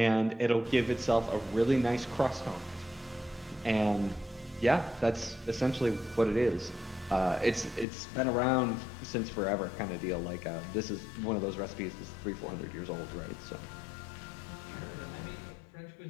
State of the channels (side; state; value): right; drops out; at 7.9 s